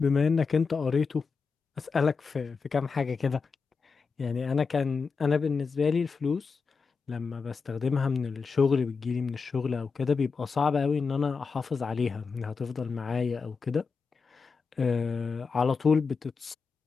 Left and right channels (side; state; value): right; quieter; 5.0 dB